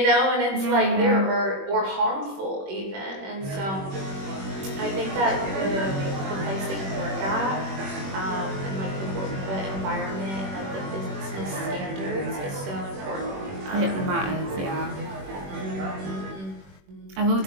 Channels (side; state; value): left; late; 21 ms